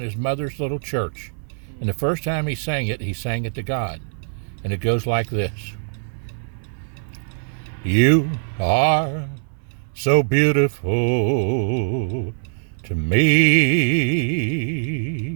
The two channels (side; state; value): left; silent; 60 dB below the other